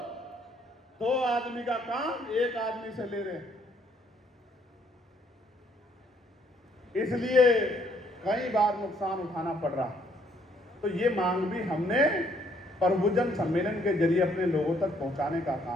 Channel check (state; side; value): normal; both; correlation 0.66